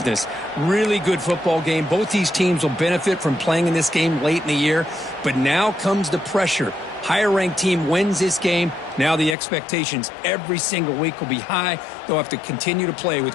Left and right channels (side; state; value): right; drops out; at 9.3 s